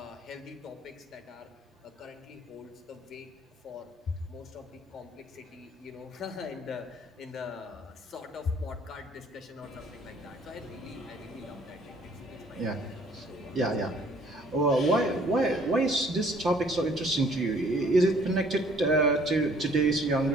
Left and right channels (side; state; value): both; normal; correlation 0.59